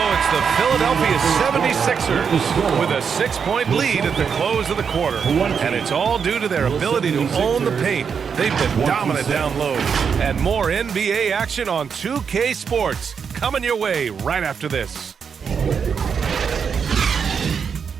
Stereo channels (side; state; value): left; quieter; 6.5 dB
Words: it's the Philadelphia 76ers with a 6-point lead at the close of the quarter. And it's all due to their ability to own the paint. They've been dominant down low. And more NBA action on 2K Sports coming your way right after this.